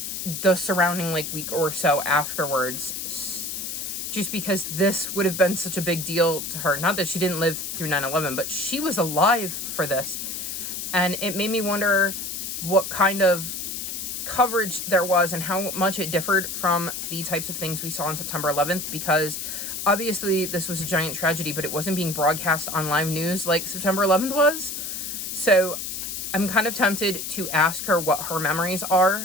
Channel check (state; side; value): noise; left; hiss, 5 dB below the sound